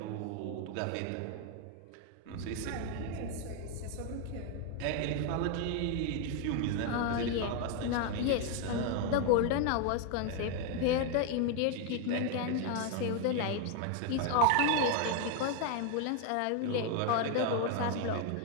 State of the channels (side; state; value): both; different; correlation 0.00